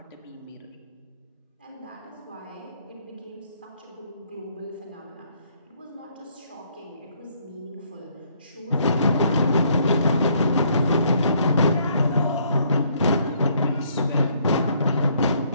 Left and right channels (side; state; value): both; inverted; correlation -0.66